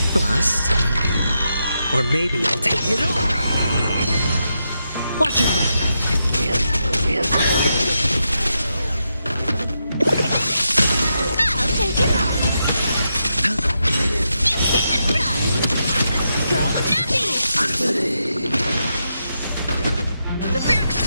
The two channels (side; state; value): both; inverted; correlation -0.84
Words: Bust. Or maybe I'll take it all. Watch your head. I'll take it all! You can't run! Go nutty! The fear